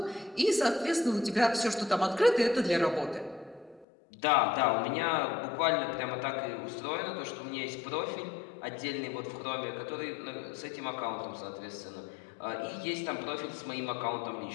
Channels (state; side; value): drops out; right; at 3.9 s